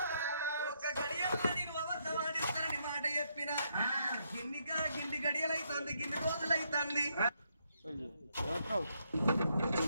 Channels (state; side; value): inverted; both; correlation -0.76